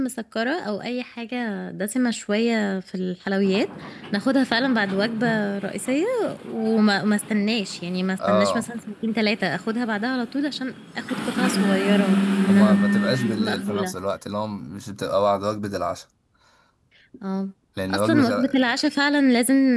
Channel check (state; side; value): identical; both; correlation 1.00